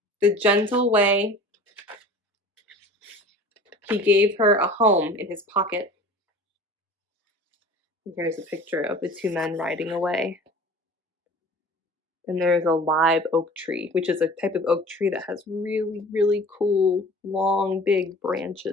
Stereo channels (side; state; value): both; normal; correlation 0.43